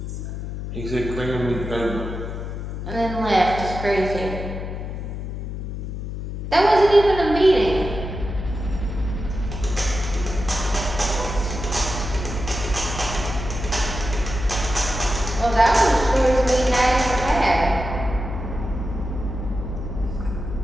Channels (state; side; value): noise; left; hum, 6 dB below the sound